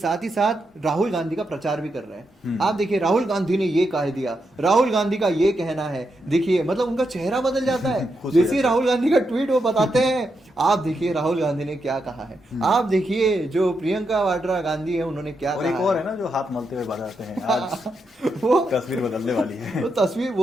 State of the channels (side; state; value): both; normal; correlation 0.83